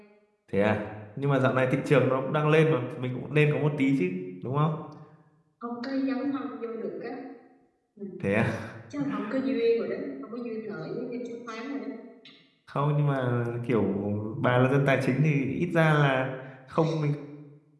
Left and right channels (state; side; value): identical; both; correlation 1.00